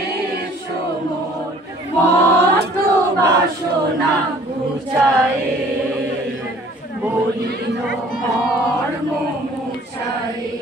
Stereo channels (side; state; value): both; normal; correlation 0.54